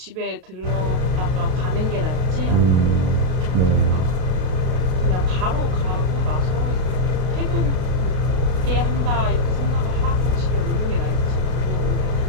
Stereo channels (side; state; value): left; late; 33 ms